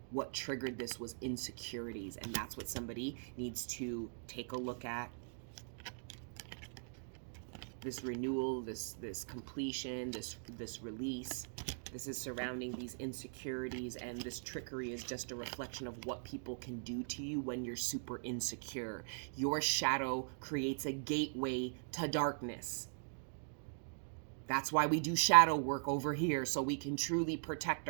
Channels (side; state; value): left; silent; digital silence